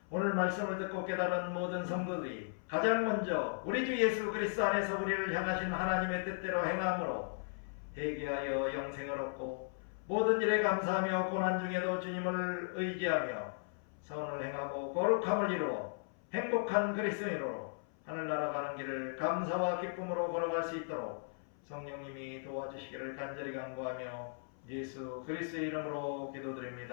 오늘 말씀을 듣고 깨달은 모든 성도들이 가장 먼저 우리 주 예수 그리스도 안에서 우리를 향하신 하나님의 뜻대로 행함으로 회개하여 영생을 얻고 모든 일에 감사하며 고난 중에도 주님을 의지하며 선을 행하고 거룩함을 이루어 행복한 그리스도인으로 하늘나라 가는 길을 감사와 기쁨으로 걸어갈 수 있도록 성령님이 도와주시기를 간절히 간구하며 예수 그리스도의 이름으로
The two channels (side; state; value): right; silent; 53 dB below the other